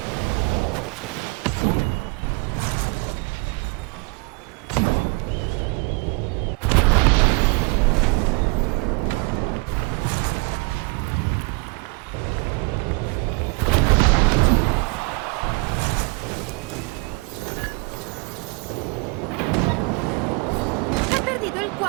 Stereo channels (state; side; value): quieter; left; 29.9 dB